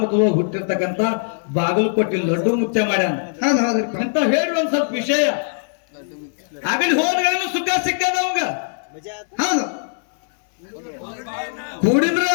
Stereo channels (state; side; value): silent; right; 65 dB below the other